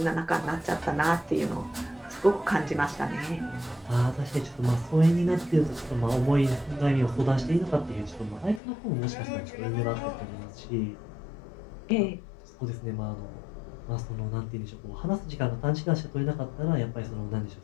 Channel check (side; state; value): right; drops out; at 8.6 s